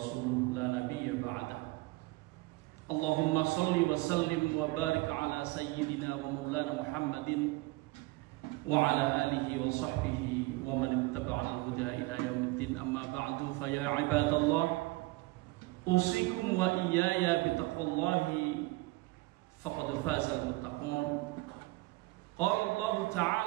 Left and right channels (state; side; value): quieter; left; 21.6 dB